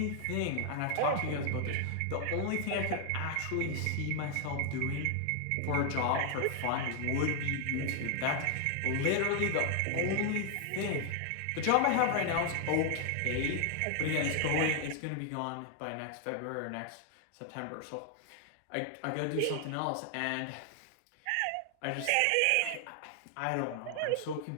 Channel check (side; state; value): both; different; correlation 0.00